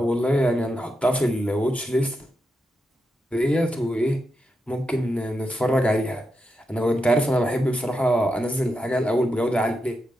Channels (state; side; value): normal; both; correlation 0.86